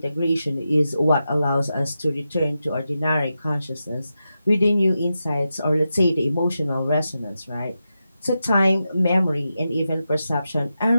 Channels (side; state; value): both; inverted; correlation -0.89